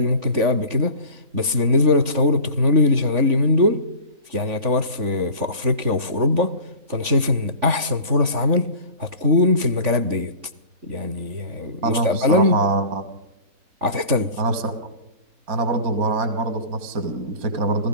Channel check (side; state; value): left; late; 3.5 ms